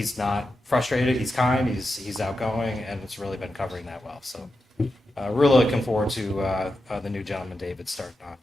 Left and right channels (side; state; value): both; normal; correlation 0.89